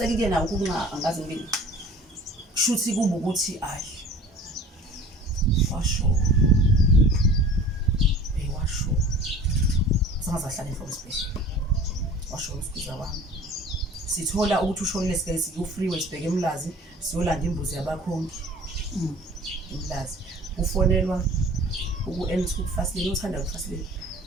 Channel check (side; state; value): both; normal; correlation 0.44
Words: nawo kunga angazi ngibili kushuthi kuba ukuthi ayi washo sangazahlala enhloko esibhedlela washo usiza wami sithola ukuthi ushonile sike siku-freeway sibheke eMlazi siyolanda imbuzi yabakhongi eMlazi ufonelwa uku-N2 kufasileni uthanda